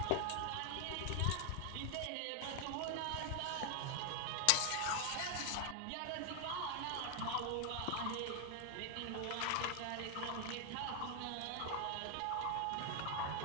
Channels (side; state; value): both; different; correlation 0.00